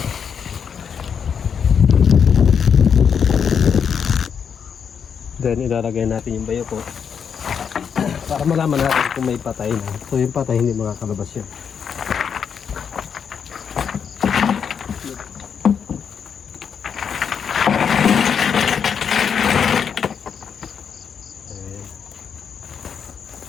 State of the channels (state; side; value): quieter; right; 7.1 dB